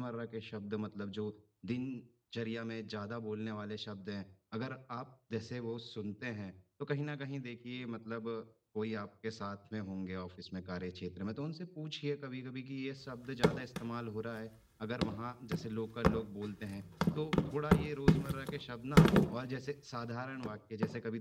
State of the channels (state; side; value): identical; both; correlation 1.00